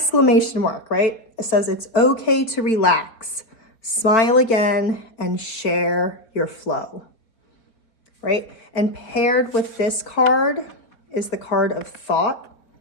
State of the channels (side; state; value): right; late; 4.5 ms